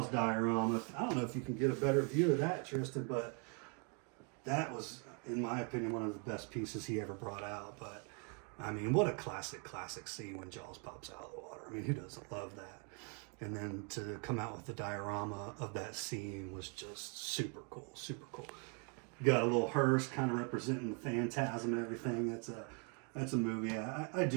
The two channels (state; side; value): quieter; left; 37.2 dB